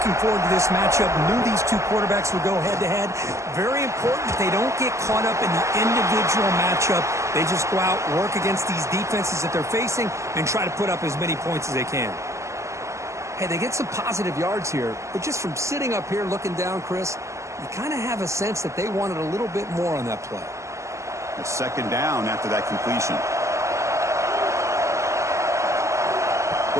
forward to this matchup. Knew these two quarterbacks would go head-to-head. Very important they don't get caught up in the individual matchup. They just go out, work against these defenses that they're facing, and try to put up as many points as they can. Hey, they get some positive yards here, but just from sitting up here looking down, Chris, you kind of have a sense that they wanted a little bit more on that play. A second down after that completion.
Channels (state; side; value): late; left; 0.14 ms